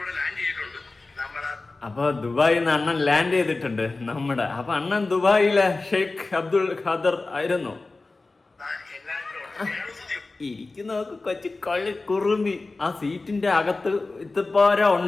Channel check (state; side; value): quieter; right; 3.4 dB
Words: അപ്പൊ ദുബായിൽ നിന്ന് അണ്ണൻ ലാൻഡ് ചെയ്തിട്ടുണ്ട് നമ്മുടെ. അപ്പൊ അണ്ണൻ ദുബായിലെ ഷെയ്ഖ് അബ്ദുൽ ഖാദർ ആയിരുന്നു. ഇരിക്കുന്നവർക്ക് കൊച്ചു കള്ളി കുറുമ്പി. ആ സീറ്റിന്റെ അകത്ത് ഇത്തപ്പോര